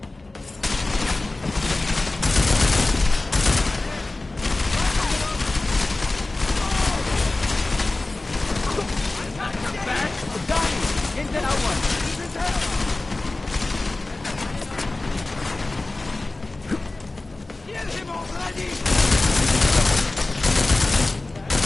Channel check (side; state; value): right; quieter; 3.1 dB